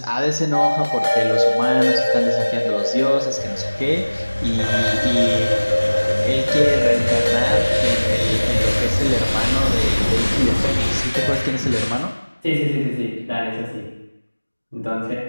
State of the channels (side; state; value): both; inverted; correlation -1.00